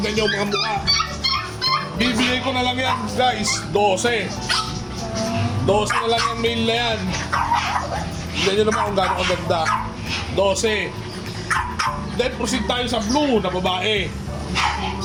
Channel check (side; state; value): both; identical; correlation 1.00